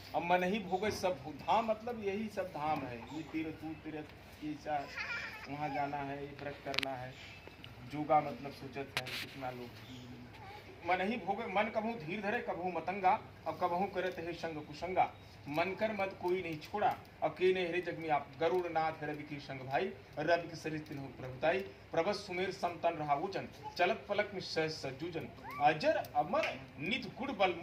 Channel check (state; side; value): identical; both; correlation 1.00